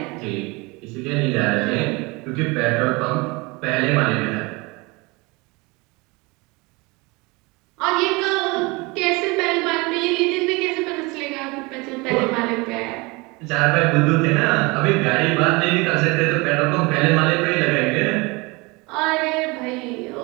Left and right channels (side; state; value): left; quieter; 25.7 dB